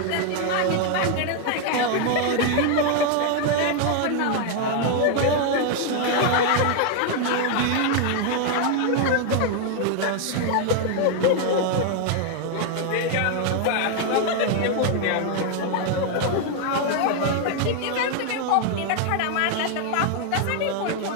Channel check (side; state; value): both; different; correlation 0.00